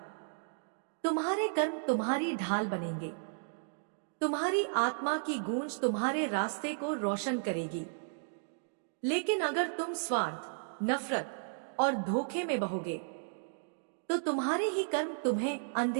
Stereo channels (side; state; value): left; silent; digital silence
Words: तुम्हारे कर्म तुम्हारी ढाल बनेंगे। तुम्हारी आत्मा की गूंज तुम्हारे रास्ते को रोशन करेगी। लेकिन अगर तुम स्वार्थ, नफरत और धोखे में बहोगे, तो तुम्हारे ही कर्म तुम्हें